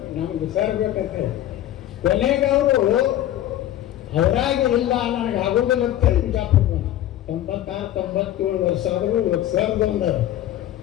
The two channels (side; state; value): right; quieter; 12.8 dB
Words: ನಮ್ಗೆ ಸರ್ ಬೇಕಂತ. ಕೊನೆಗೆ ಅವರು ಅವರಾಗಿ ಇಲ್ಲ ನನಗೆ ಆಗೋದಿಲ್ಲ ಅಂತ ಬಿಜಾಪುರ 96-97 ವರ್ಷ ಆದರೂ ಸರ್ದೊಂದು